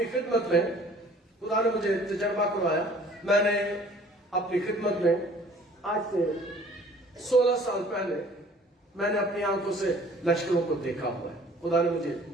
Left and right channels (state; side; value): normal; both; correlation 0.53